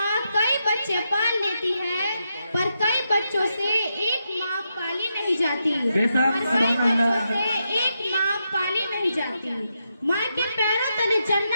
कई बच्चे पाल लेती है, पर कई बच्चों से एक माँ पाली नहीं जाती। कई बच्चों से एक माँ पाली नहीं जाती। माँ के पैरों तले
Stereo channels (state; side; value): inverted; both; correlation -0.84